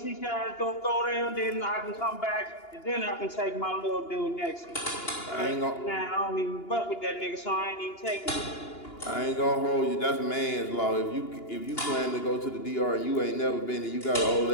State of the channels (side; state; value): right; late; 2.9 ms